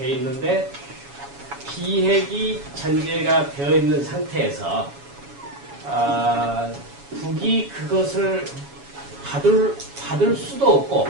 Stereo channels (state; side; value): late; left; 7.2 ms